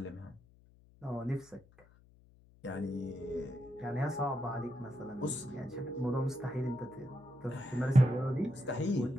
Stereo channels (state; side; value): noise; left; hum, 26 dB below the sound